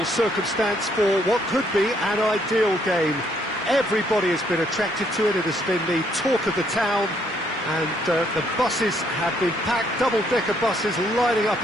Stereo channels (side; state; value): both; normal; correlation 0.69